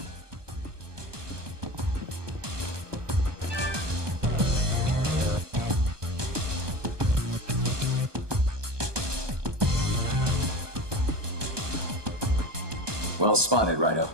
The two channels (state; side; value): late; left; 1.2 ms